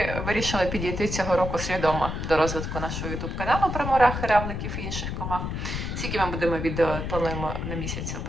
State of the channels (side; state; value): left; noise; rumble, 4 dB below the sound